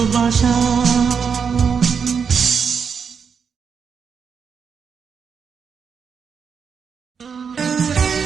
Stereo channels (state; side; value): quieter; left; 6.4 dB